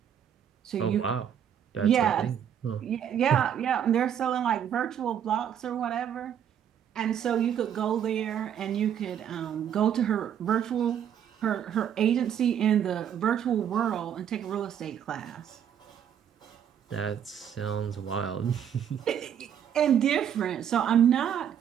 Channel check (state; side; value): quieter; left; 9.1 dB